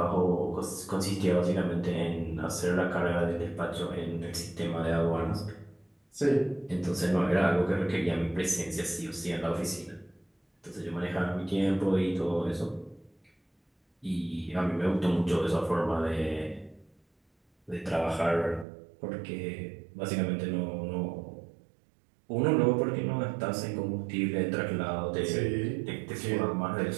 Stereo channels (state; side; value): drops out; left; at 18.7 s